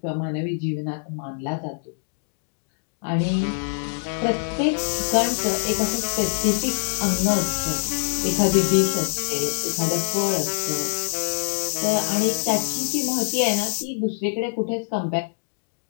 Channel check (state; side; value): silent; right; digital silence